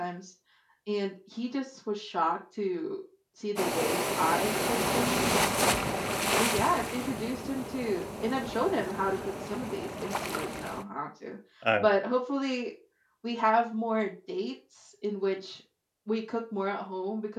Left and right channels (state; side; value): identical; both; correlation 1.00